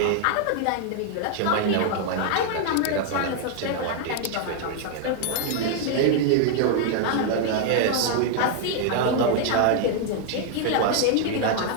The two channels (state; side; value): different; both; correlation 0.00